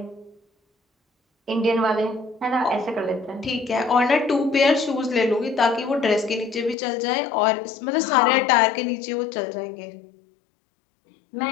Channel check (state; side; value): drops out; right; at 6.8 s